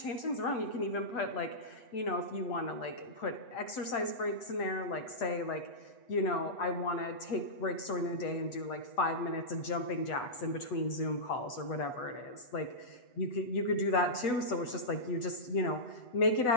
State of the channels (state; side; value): late; right; 8.0 ms